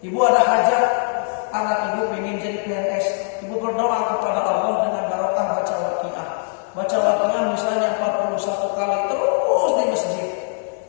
Ibu ada hajat, anak ibu ingin jadi PNS. Ibu berdoa kepada Allah dengan barokah baca Waqiah. Baca Waqiah misalnya 41 kali terus di masjid.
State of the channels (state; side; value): silent; right; 56 dB below the other